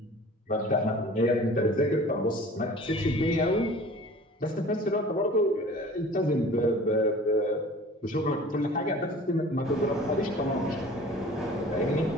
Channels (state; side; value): normal; both; correlation 0.45